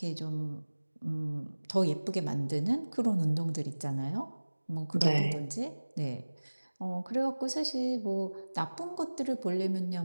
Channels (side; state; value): both; inverted; correlation -1.00